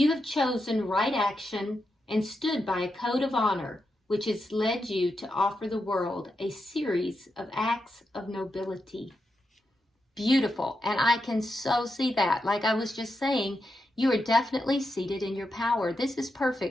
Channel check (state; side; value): normal; both; correlation 0.86